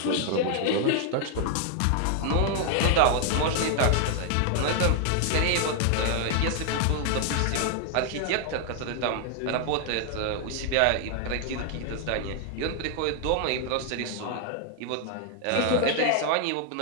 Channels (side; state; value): both; different; correlation 0.00